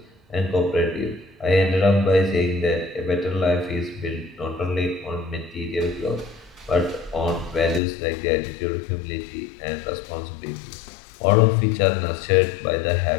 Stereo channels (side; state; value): right; drops out; at 7.8 s